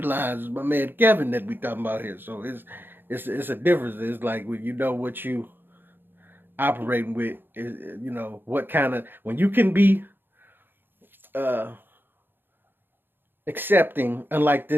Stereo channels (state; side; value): late; left; 0.099 ms